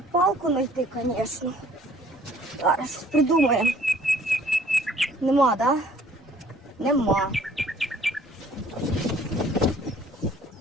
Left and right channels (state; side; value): normal; both; correlation 0.57